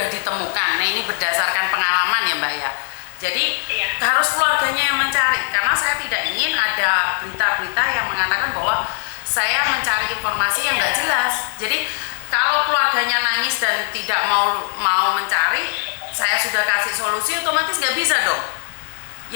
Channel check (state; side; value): silent; right; digital silence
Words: ditemukan. Nah, ini berdasarkan pengalaman ya, Mbak ya. Jadi harus keluarganya yang mencari, karena saya tidak ingin ada berita-berita yang mengatakan bahwa saya mencari informasi yang nggak jelas. Jadi kalau keluarganya nangis dan tidak mau mencari, saya sudah kasih solusi, otomatis nggak bisa dong.